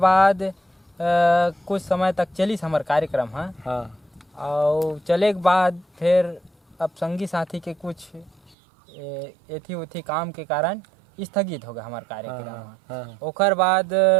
कुछ समय तक चली हमार कार्यक्रम। हाँ। हाँ। और चले के बाद फिर अब संगी साथी के कुछ एथी उथी काम के कारण स्थगित हो गया हमारा कार्यक्रम। हाँ। ओकर बाद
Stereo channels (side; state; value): left; drops out; at 8.6 s